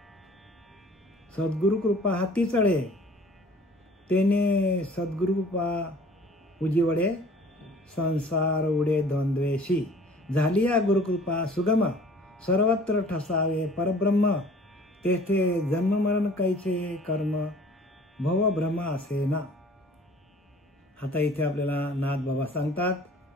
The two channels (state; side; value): normal; both; correlation 0.50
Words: सद्गुरु कृपा हाती चढे, तेने सद्गुरु कृपा उजिवडे, संसार उडे द्वंद्वेशी. झालिया गुरुकृपा सुगम, सर्वत्र ठसावे परब्रह्म, तेथे जन्म मरण कैचे कर्म, भव भ्रम असे ना. आता इथे आपल्याला नाथ बाबा सांगतात